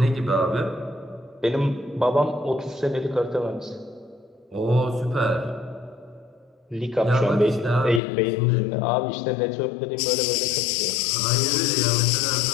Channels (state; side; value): drops out; right; at 8.0 s